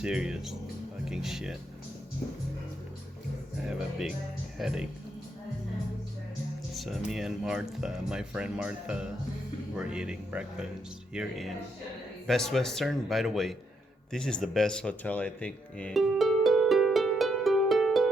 fucking shit. I have a big headache. So me and Martha, my friend Martha, were eating breakfast here in Best Western. By the way, this is the best hotel I think in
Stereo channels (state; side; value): normal; both; correlation 0.77